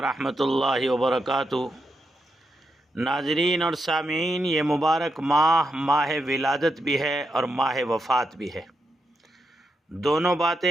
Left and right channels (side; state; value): both; normal; correlation 0.84